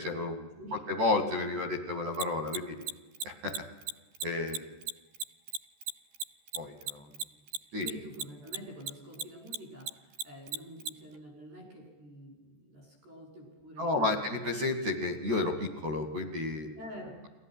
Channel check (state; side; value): late; left; 14 ms